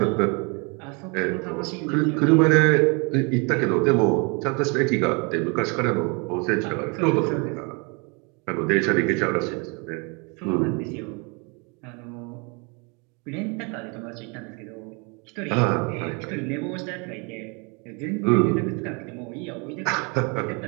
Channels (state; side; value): quieter; left; 32.3 dB